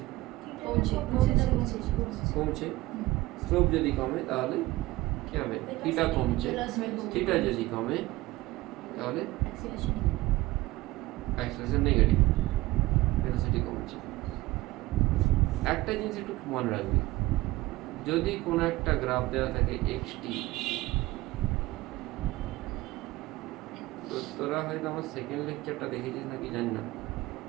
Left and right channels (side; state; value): left; quieter; 18.8 dB